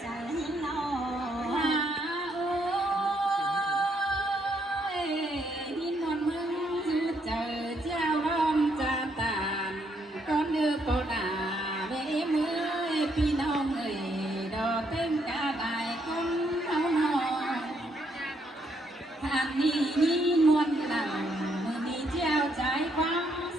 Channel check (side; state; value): both; normal; correlation 0.74